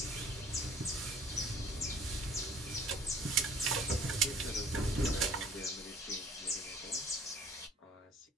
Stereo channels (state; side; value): normal; both; correlation 0.54